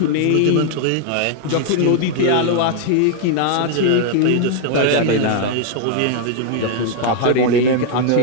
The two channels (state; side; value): different; both; correlation 0.00